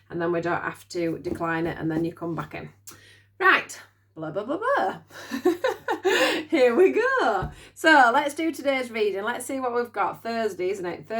and then we don't have to decline it and then you come back in. Right, blah blah blah blah. Here we go. So let's do today's reading. Let's see what we've got. Thursday, isn't it?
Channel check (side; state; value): both; identical; correlation 1.00